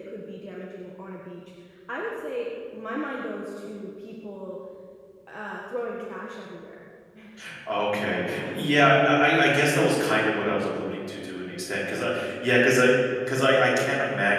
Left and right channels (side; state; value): both; identical; correlation 1.00